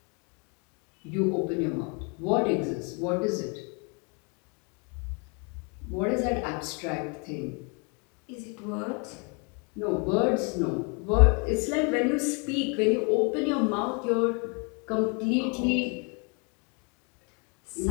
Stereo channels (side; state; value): right; quieter; 34.4 dB